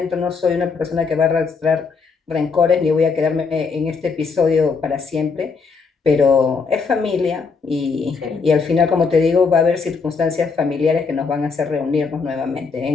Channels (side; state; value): right; quieter; 4.9 dB